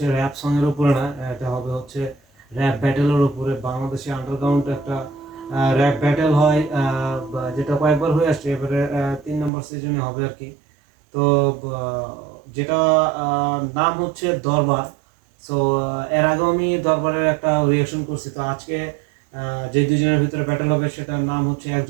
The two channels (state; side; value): drops out; left; at 9.5 s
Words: র‍্যাপ সং এর উপরে না, এটা হবে হচ্ছে র‍্যাপ ব্যাটেলের উপরে। বাংলাদেশে আন্ডারগ্রাউন্ড একটা র‍্যাপ ব্যাটেল হয়, যেটা কয়েকবার হয়ে আসছে, এবারে 3 নম্বর সিজনে হবে আর কি। তো যেটা নাম হচ্ছে দরবার। সো এর আগে আমি দরবারের একটা রিঅ্যাকশন করছি। তো আজকে যে দুজনের ভিতরে ব্যাটেল হবে সেটার নাম হচ্ছে,